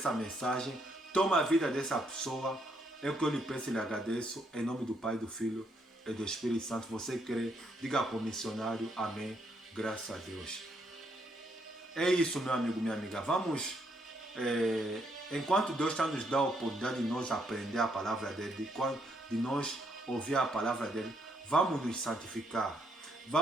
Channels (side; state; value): both; normal; correlation 0.74